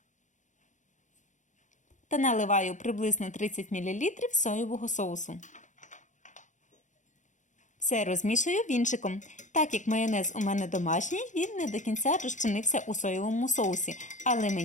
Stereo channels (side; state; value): right; late; 0.36 ms